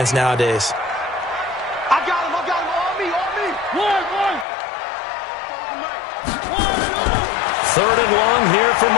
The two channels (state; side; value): drops out; right; at 4.5 s